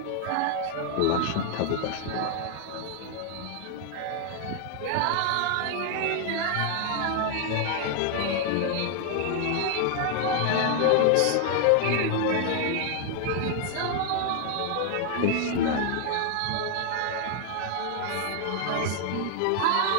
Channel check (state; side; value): different; both; correlation 0.00